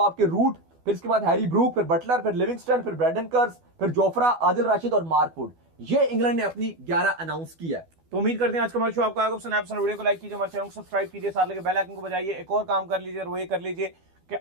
आपके रूट, फिर इसके बाद हैरी ब्रूक, फिर बटलर, फिर लिविंगस्टन, फिर ब्रेडन कर्स, फिर जोफ्रा, आदिल राशिद और मार्क वुड। ये इंग्लैंड ने अपनी 11 अनाउंस किया है। तो उम्मीद करते हैं आज का हमारा शो आपको आएगा पसंद। वीडियो को लाइक कीजिए, हमारे चैनल को सब्सक्राइब कीजिए, साथ लगे बेल आइकन को बजाइए। एक और काम कर लीजिए और वो ये कर लीजिए कि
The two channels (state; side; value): late; left; 12 ms